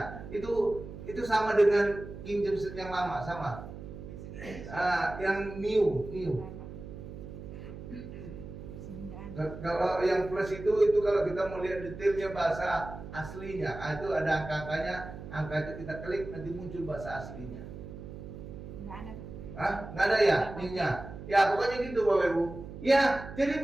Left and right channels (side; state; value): right; noise; hum, 12 dB below the sound